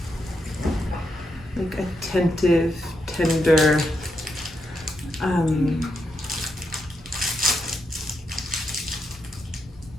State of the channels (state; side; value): normal; both; correlation 0.83